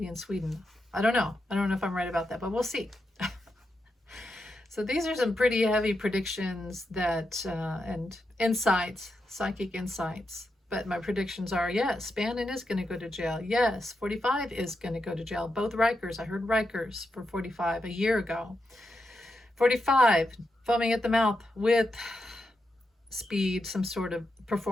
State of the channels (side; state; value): both; normal; correlation 0.86